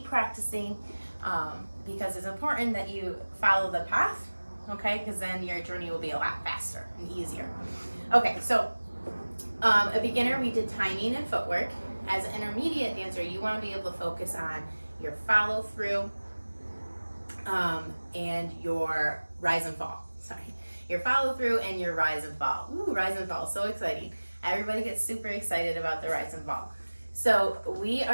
practicing because it's important that you follow the path, okay? Because then your journey will be a lot faster and easier. Okay, so a beginner, we did timing and footwork. As an intermediate dancer, you want to be able to focus on your follow through and your rise and fall. Sorry, your follow through and your rise and fall. Ooh, rise and fall, so exciting. Everybody gets super excited about the rise and fall. So we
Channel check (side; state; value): both; inverted; correlation -1.00